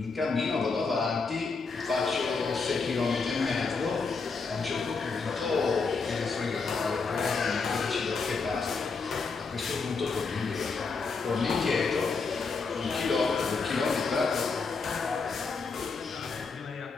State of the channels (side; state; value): right; quieter; 4.6 dB